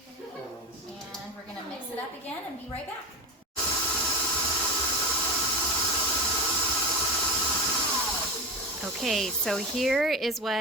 And we're going to mix it up again and be right back. Okay, so here is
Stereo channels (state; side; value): normal; both; correlation 0.21